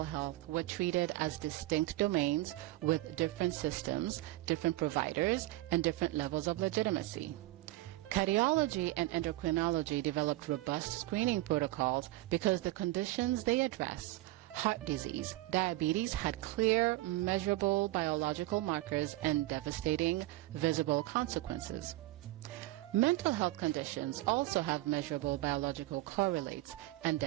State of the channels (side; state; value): left; quieter; 17.3 dB